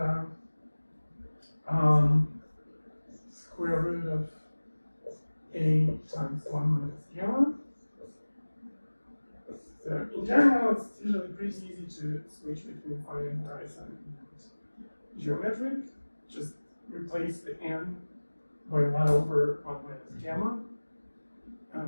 square root of A times 1 minus gamma. So in general, it's usually pretty easy to switch between finite horizon and geometric. Just replace the n by 1 over 1 minus gamma.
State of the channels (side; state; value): both; inverted; correlation -1.00